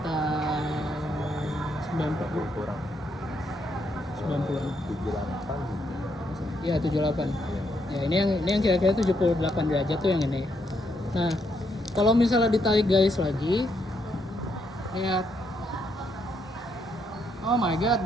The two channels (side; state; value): both; normal; correlation 0.76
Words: 90 kurang 90. 78. Iya, 78. Ya, ini yang kira-kira 78 derajat tuh yang ini. Nah, kalau misalnya ditarik garis lagi, Lihat. Oh my god,